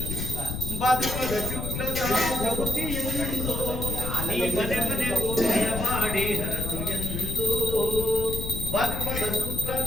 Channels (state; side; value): noise; left; rumble, 4 dB below the sound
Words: ಬದುಕದ ಶುಕ್ಲದ ಜ್ಯೋತಿಯೆಂದು ನೀ ಮನೆ ಮನೆಗೂ ದಯ ಮಾಡಿ ಹರಸು ಎಂದು ಬದುಕದ